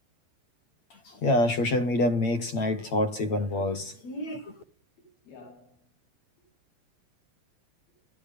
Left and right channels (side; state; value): right; late; 8.7 ms